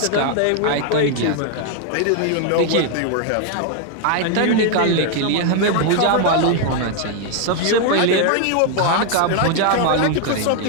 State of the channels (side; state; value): both; different; correlation 0.00